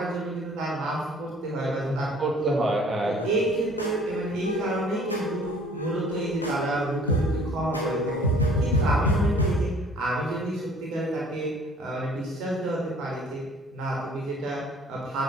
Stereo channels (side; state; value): both; normal; correlation 0.53